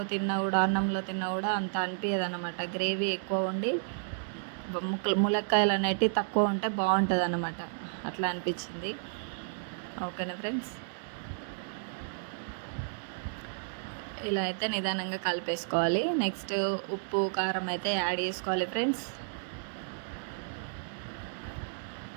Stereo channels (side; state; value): left; silent; digital silence